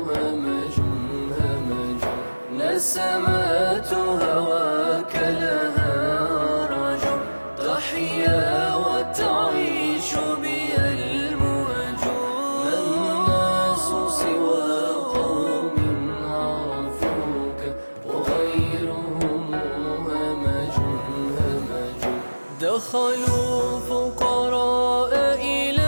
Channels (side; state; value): both; inverted; correlation -1.00